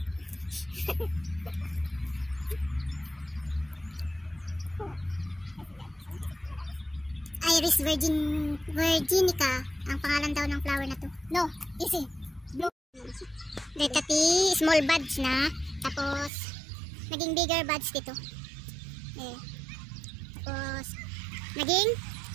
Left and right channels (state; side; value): drops out; left; at 16.3 s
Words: Iris virginica ang pangalan daw ng flower na to. No, easy. Blue. Dati small buds na, tapos naging bigger buds dito. Eh. Tapos naging